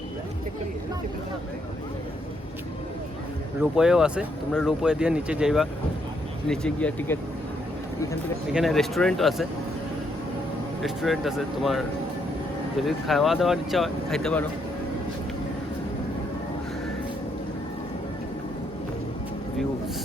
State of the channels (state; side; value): normal; both; correlation 0.75